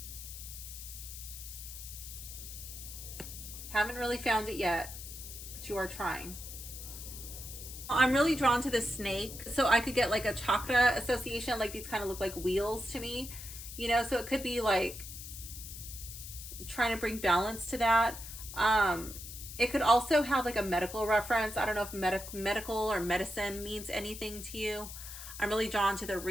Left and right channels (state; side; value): noise; left; hiss, 11 dB below the sound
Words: Haven't really found it yet, but you are trying. I'm really drawn to the snake. So I could get like a chakra association. Like these kind of look like wheels to me, you know, so it could be like trying to bring balance to that. It could also have like a medical reference. I don't know if medical or medicine means anything to you. I'm really drawn to the